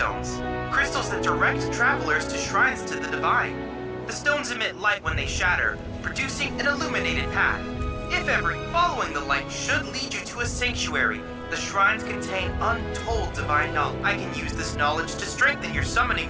crystals that direct travelers to shrines to the divine. The stones emit light when they shatter, producing an illuminated path. If ever, following the light should lead you to a sanctuary. The shrines contain untold divine knowledge. I can use this knowledge to strengthen your summoning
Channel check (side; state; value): both; identical; correlation 1.00